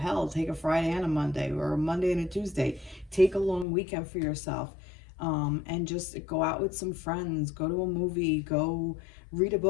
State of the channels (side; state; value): right; drops out; at 3.7 s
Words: take a Friday and a Monday, or a Monday and a Tuesday. Take a long weekend for yourself, and just go out with some friends, go to a movie, go read a